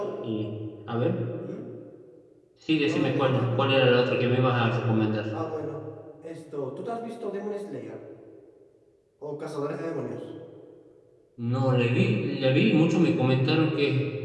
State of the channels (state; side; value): identical; both; correlation 1.00